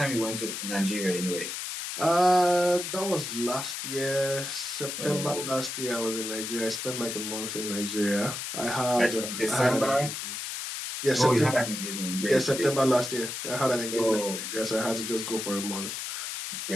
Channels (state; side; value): noise; left; hiss, 5 dB below the sound